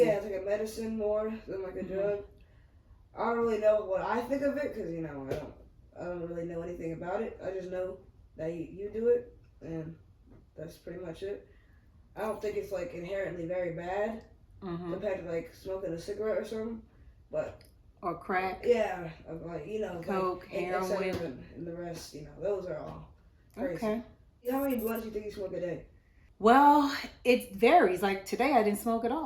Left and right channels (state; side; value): identical; both; correlation 1.00